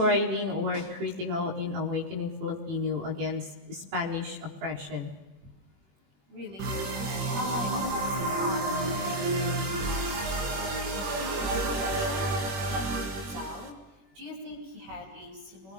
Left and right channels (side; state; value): left; late; 21 ms